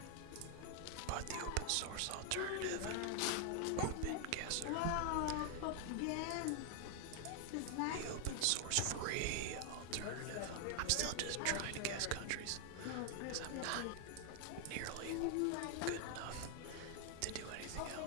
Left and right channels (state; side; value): different; both; correlation 0.00